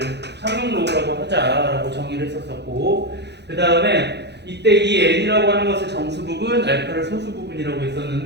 상용로그라고 하자라고 정의를 했었었고 그 다음에 이때 이 n이라고 하는 것을 정수 부분, 알파를 소수 부분이라고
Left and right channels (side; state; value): left; late; 0.50 ms